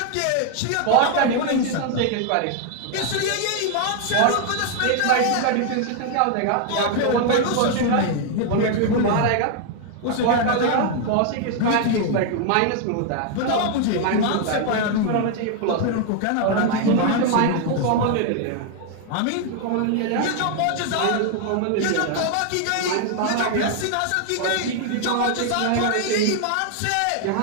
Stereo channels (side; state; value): both; different; correlation 0.00